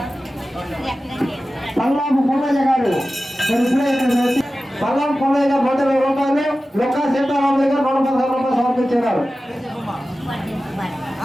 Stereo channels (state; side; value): normal; both; correlation 0.95